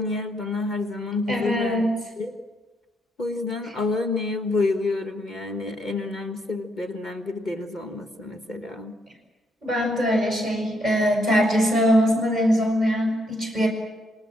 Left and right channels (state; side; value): normal; both; correlation 0.75